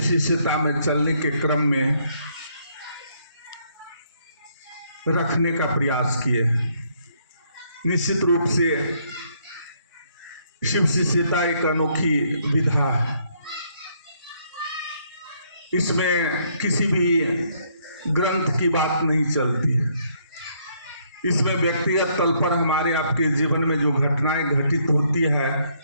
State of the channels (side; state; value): both; inverted; correlation -0.70